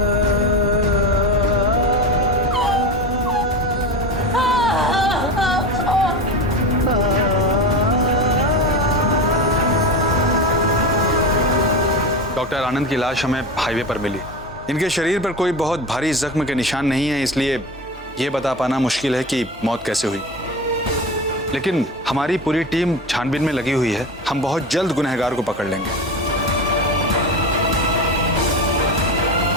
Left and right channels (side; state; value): both; normal; correlation 0.25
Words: डॉक्टर, आनंद की लाश हमें हाईवे पर मिली। इनके शरीर पर कोई बहुत भारी जख्म के निशान नहीं है, इसलिए यह बता पाना मुश्किल है कि मौत कैसे हुई। लेकिन हमारी पूरी टीम छानबीन में लगी हुई है। हम बहुत जल्द गुनहगार को पकड़ लेंगे।